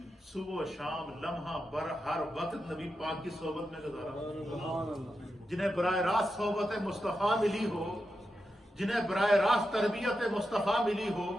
صبح و شام لمحہ بر ہر وقت نبی پاک کی صحبت میں گزارا، جنہیں براہ راست صحبت مصطفیٰ ملی ہو، جنہیں براہ راست تربیت مصطفیٰ ملی ہو،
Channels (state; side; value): normal; both; correlation 0.88